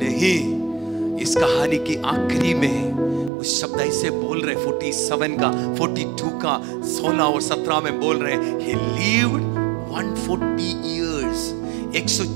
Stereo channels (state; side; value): drops out; left; at 3.3 s